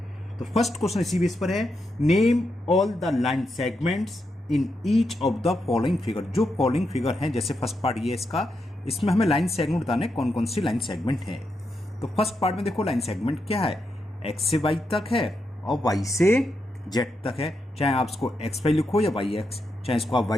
तो फर्स्ट क्वेश्चन इसी बेस पर है, name all the line segments in each of the following figure. जो फॉलोइंग फिगर है, जैसे फर्स्ट पार्ट ये इसका, इसमें हमें लाइन सेगमेंट बताने कौन कौन सी लाइन सेगमेंट है. तो फर्स्ट पार्ट में देखो लाइन सेगमेंट क्या है, एक्स से वाई तक है और वाई से जेड तक है. चाहे आप इसको एक्स वाई लिखो या वाई एक्स, चाहे इसको आप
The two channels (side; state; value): both; normal; correlation 0.84